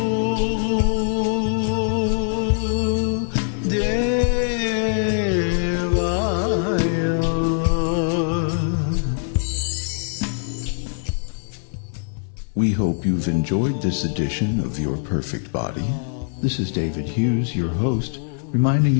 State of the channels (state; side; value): silent; right; 62 dB below the other